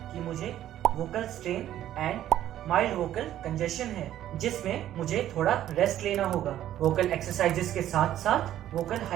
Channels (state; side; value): quieter; left; 12.2 dB